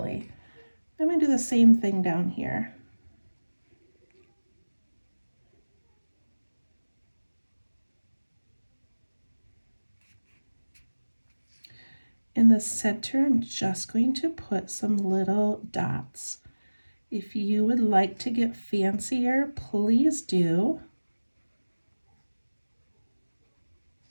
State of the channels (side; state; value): both; inverted; correlation -1.00